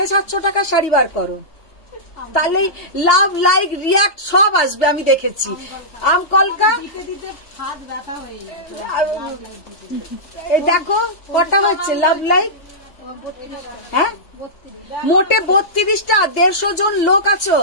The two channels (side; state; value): right; late; 3.1 ms